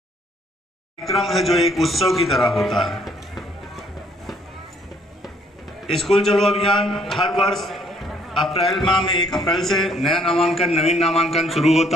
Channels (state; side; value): normal; both; correlation 0.64